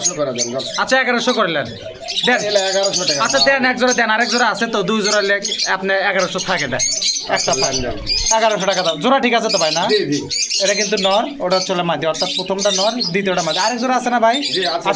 করে দেন যান। আচ্ছা 1100 করলেন দেন। এগুলা 1100 টাকা। আচ্ছা দেন, এক জোড়া দেন, আরেক জোড়া আছে তো, 2 জোড়া লেখ আপনি 1100 থাকে দেন, একটা লেন যান। 1100 টাকা দাম। জোড়া ঠিক আছে তো ভাই না? জি জি। এটা কিন্তু নর, ওটা হচ্ছে মাদি, অর্থাৎ প্রথমটা নর, দ্বিতীয়টা মাদি। আরেক জোড়া আছে না ভাই? জি, আছে,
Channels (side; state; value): both; identical; correlation 1.00